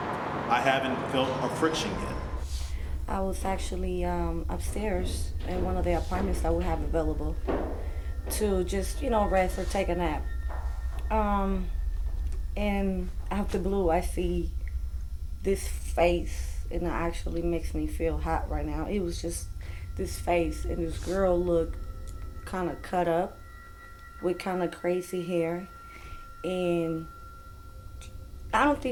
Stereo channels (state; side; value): identical; both; correlation 1.00